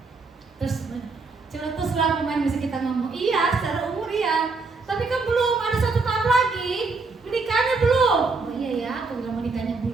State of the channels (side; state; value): left; quieter; 4.0 dB